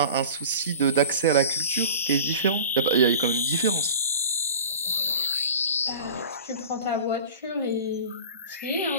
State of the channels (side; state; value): both; inverted; correlation -0.38